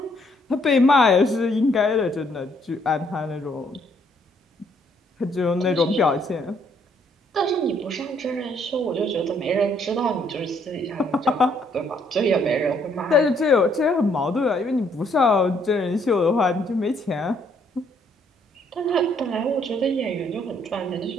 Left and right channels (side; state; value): both; normal; correlation 0.67